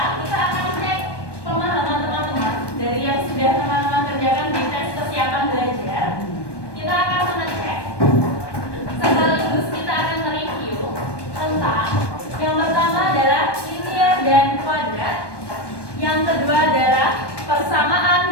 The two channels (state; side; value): late; right; 1.2 ms